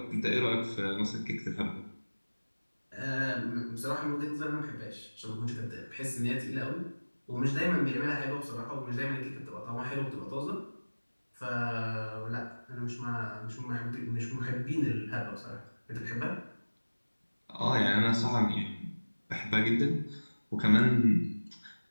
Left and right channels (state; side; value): inverted; both; correlation -1.00